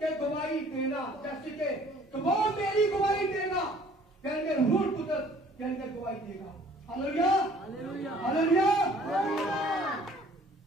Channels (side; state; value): both; normal; correlation 0.55